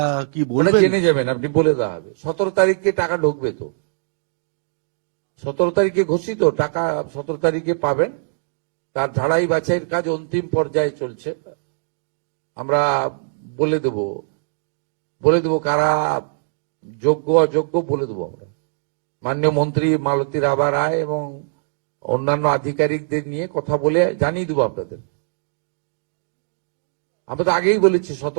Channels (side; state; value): left; silent; digital silence